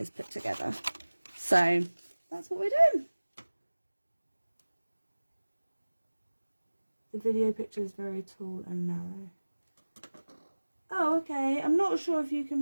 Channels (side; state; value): both; inverted; correlation -1.00